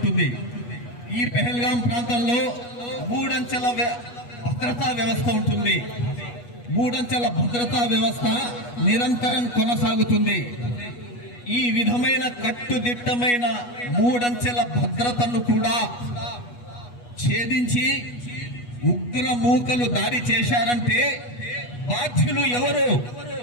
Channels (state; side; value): late; right; 8.3 ms